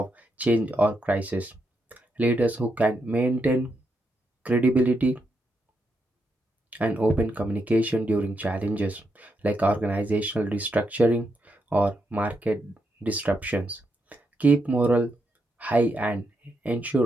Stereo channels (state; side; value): normal; both; correlation 0.82